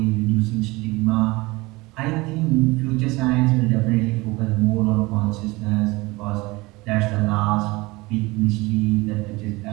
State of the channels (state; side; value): quieter; left; 22.6 dB